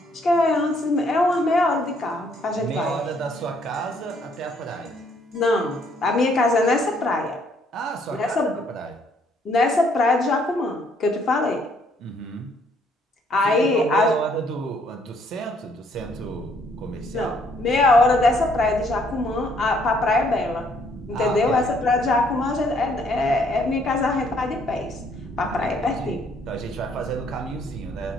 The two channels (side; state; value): both; normal; correlation 0.66